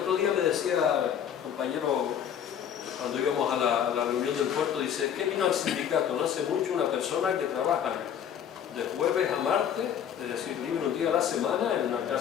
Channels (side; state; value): right; quieter; 8.9 dB